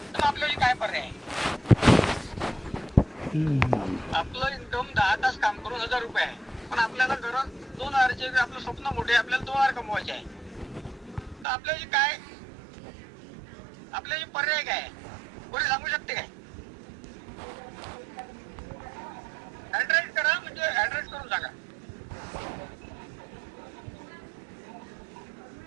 तर आपल्याला काय पर्याय आहे? आपलं इन्कम 10 तास काम करून 1000 रुपये आहे, पण आपल्याला गरज 2000चे, आपलं स्वप्न मोठे, आपल्याला 2000 कमवायचे आहे. तर आपल्याला काय, आपल्याला पर्याय काय आहे? कोणी सांगू शकते काय? ऍड्रेस करा, म्हणजे ऍड्रेस करून सांगा.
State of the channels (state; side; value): drops out; left; at 11.5 s